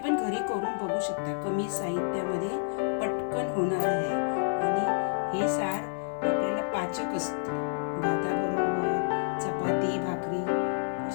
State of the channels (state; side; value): silent; right; digital silence